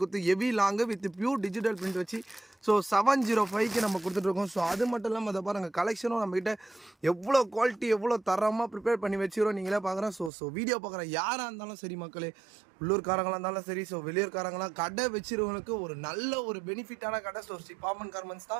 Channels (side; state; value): left; drops out; at 10.3 s